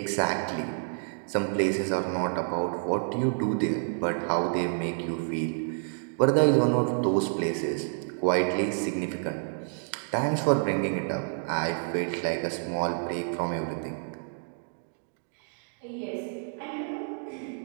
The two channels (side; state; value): left; silent; digital silence